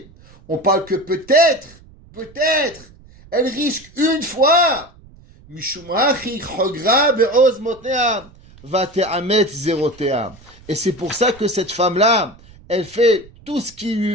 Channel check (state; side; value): noise; right; rumble, 24 dB below the sound